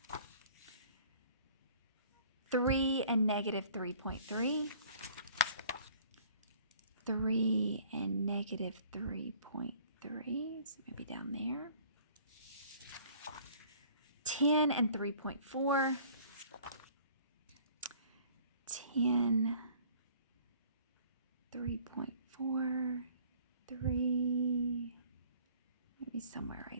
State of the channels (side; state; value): both; inverted; correlation -0.53